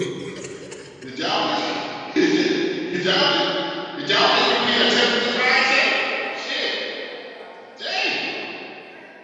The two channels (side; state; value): both; identical; correlation 1.00